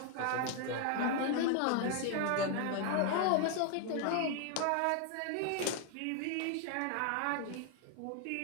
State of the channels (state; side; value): different; both; correlation 0.01